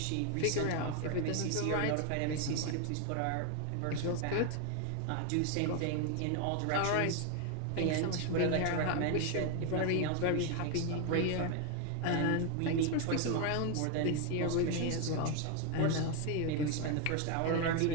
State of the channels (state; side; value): different; both; correlation 0.01